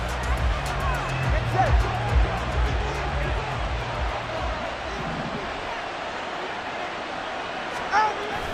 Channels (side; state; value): both; identical; correlation 1.00